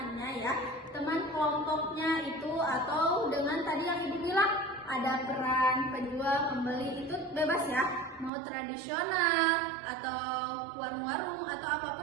ya, teman kelompoknya itu, atau dengan tadi yang Ibu bilang ada peran penjual, pembeli, itu bebas ya, mau tradisional atau warung-warung atau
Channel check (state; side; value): drops out; left; at 8.3 s